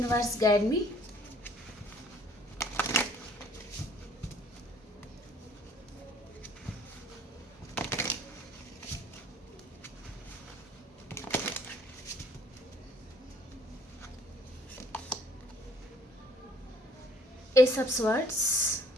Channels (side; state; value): both; normal; correlation 0.58